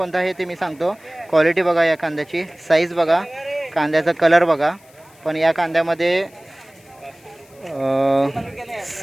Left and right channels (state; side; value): noise; left; hiss, 29 dB below the sound